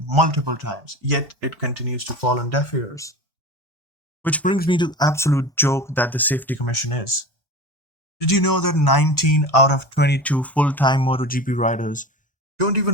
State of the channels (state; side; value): normal; both; correlation 0.32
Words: multiple times, yet it continues to fall on deaf ears. Which brings me to the absolute joke that the Safety Commission is. Did you know that 19 out of 22 full-time MotoGP riders don't